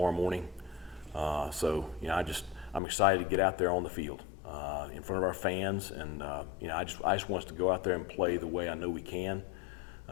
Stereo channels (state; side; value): drops out; right; at 2.8 s